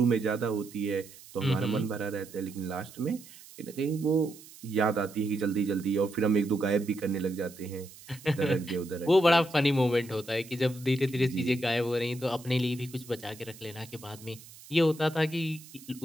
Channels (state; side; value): noise; right; hiss, 19 dB below the sound